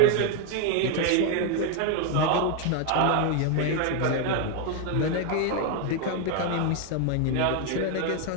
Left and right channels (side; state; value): both; different; correlation 0.01